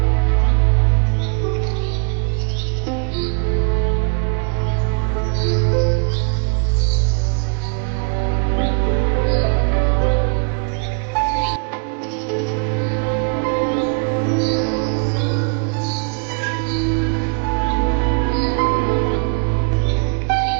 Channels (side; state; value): left; quieter; 38.5 dB